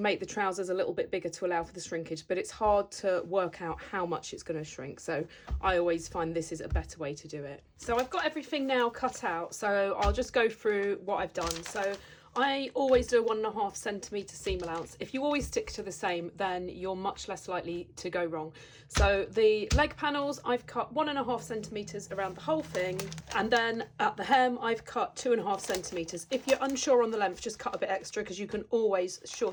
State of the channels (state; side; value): identical; both; correlation 1.00